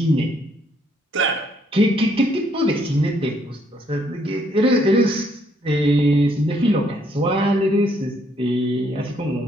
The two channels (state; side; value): normal; both; correlation 0.69